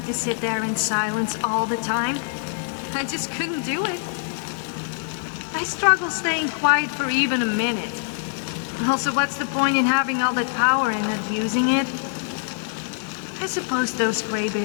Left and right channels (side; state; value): right; silent; 61 dB below the other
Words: to sit there in silence all the time. I just couldn't do it. I struggle staying quiet for even a minute. Also, what's the point in having all that power and not using it? I suppose those